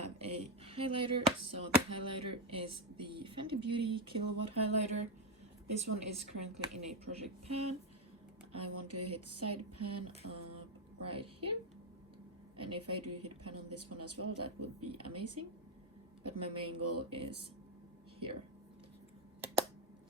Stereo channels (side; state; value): both; normal; correlation 0.07